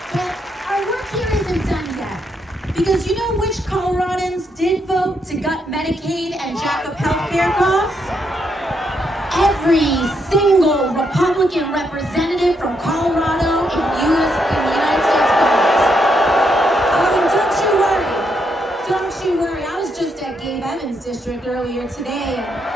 But our work here isn't done yet, because you know which Coloradans did vote to gut Medicaid and jack up healthcare costs? Every single Republican representative from Colorado in the United States Congress. Oh, and don't you worry. I was just at Gabe Evans' district earlier today,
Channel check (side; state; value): both; normal; correlation 0.78